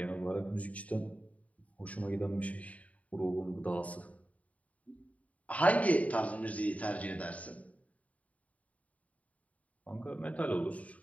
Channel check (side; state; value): right; late; 0.068 ms